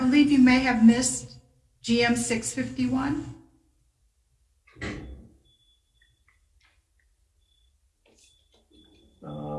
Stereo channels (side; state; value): both; identical; correlation 1.00